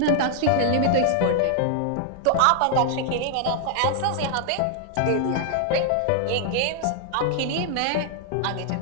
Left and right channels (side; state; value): both; different; correlation 0.00